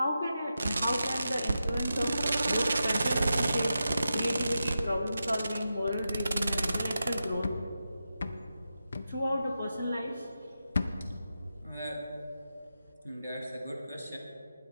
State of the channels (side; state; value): both; inverted; correlation -0.89